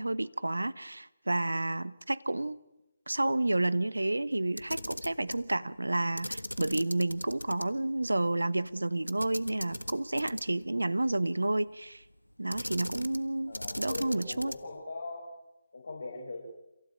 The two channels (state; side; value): inverted; both; correlation -0.99